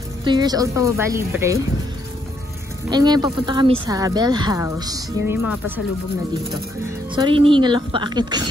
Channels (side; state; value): both; normal; correlation 0.74